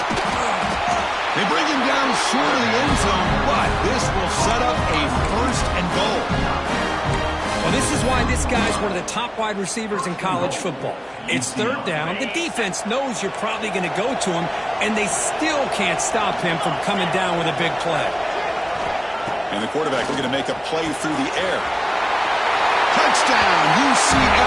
They bring him down short of the end zone, but this will set up a first and goal. Well, this is why this guy's one of the top wide receivers in college football. It's third down. The defense knows you're probably going to go to him, and they still can't stop him from coming down with a big play. And the quarterback looking to make a play through the air. Touchdown,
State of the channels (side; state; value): both; identical; correlation 1.00